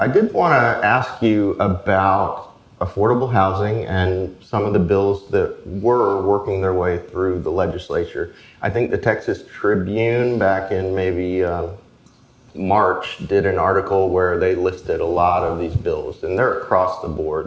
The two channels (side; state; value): both; identical; correlation 1.00